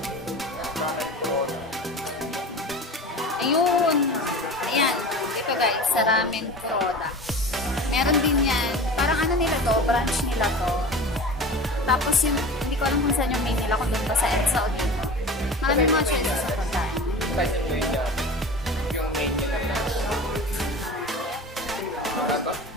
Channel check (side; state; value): both; normal; correlation 0.34